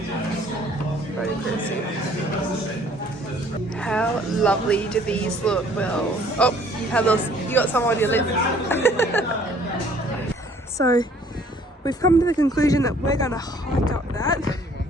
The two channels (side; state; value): both; normal; correlation 0.58